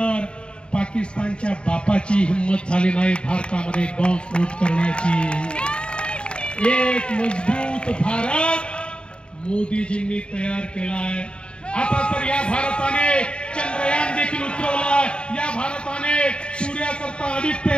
पाकिस्तानच्या बापाची हिम्मत झाली नाही भारतामध्ये बॉम्बस्फोट करण्याची. एक मजबूत भारत मोदीजींनी तयार केलाय. आता तर या भारताने चंद्रयान देखील उतरवलाय, या भारताने सूर्याकरता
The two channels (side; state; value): right; late; 0.053 ms